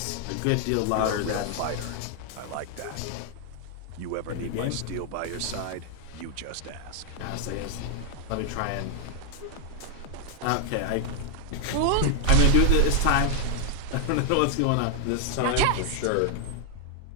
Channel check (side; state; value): both; different; correlation 0.00